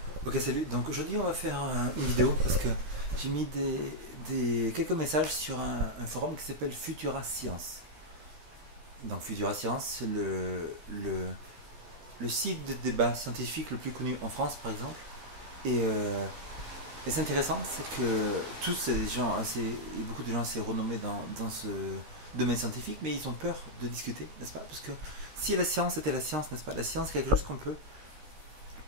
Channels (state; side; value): late; left; 13 ms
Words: Ok, salut. Donc aujourd'hui, on va faire une vidéo parce que j'ai mis quelques messages sur un forum qui s'appelle Futura Science. Donc Futura Science, c'est le site de débat scientifique le plus connu en France, par exemple. Et, euh, et c'est intéressant, c'est que tous, c'est des gens assez, beaucoup de gens assez renommés dans ce domaine scientifique, mais ils ont peur de discuter, n'est-ce pas? Parce que si la science était la science, n'est-ce pas? La science, c'est quelque chose qu'on peut